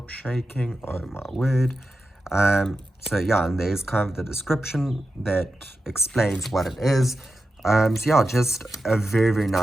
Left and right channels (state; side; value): normal; both; correlation 0.91